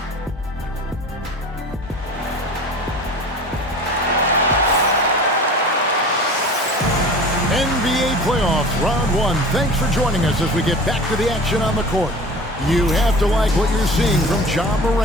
NBA playoffs, round 1. Thanks for joining us as we get back to the action on the court. You have to like what you're seeing from Ja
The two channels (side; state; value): both; normal; correlation 0.39